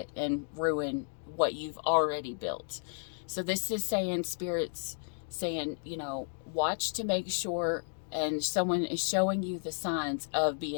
and ruin what you've already built. So this is saying, Spirit's saying, watch to make sure, and someone is showing you the signs of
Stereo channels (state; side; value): silent; right; 56 dB below the other